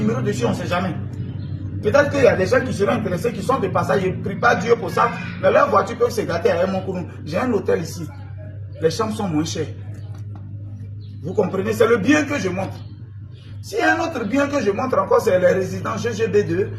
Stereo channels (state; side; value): identical; both; correlation 1.00